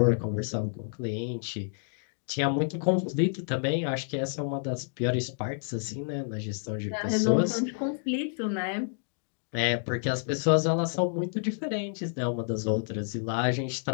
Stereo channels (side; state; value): right; silent; digital silence